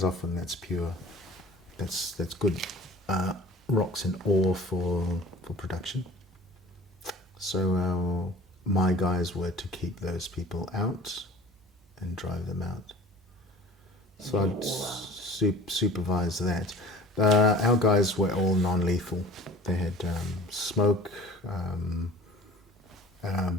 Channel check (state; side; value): normal; both; correlation 0.44